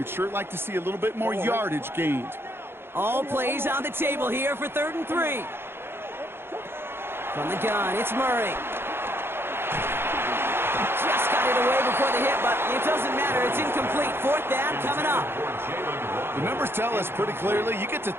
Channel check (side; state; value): left; late; 0.11 ms